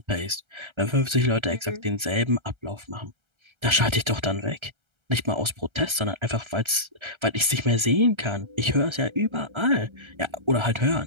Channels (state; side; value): late; left; 1.3 ms